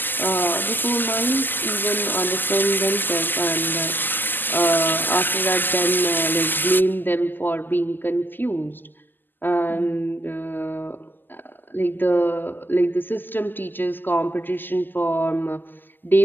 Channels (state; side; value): late; right; 0.090 ms